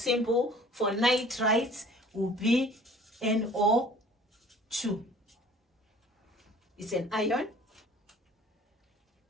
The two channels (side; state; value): both; normal; correlation 0.50